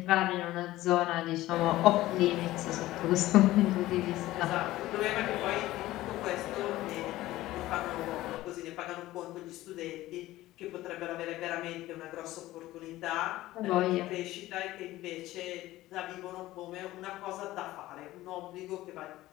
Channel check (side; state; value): right; quieter; 16.4 dB